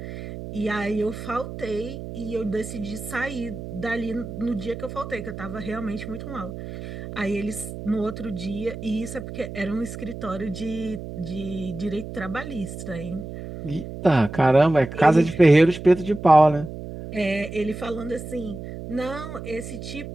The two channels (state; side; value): noise; right; hum, 10 dB below the sound